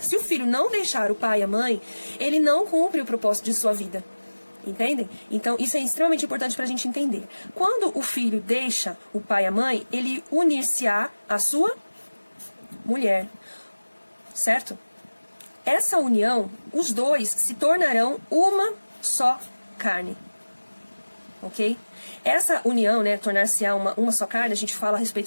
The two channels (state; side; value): inverted; both; correlation -1.00